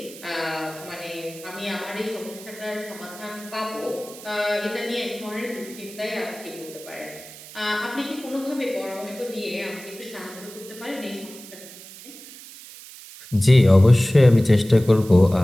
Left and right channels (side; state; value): right; noise; hiss, 17 dB below the sound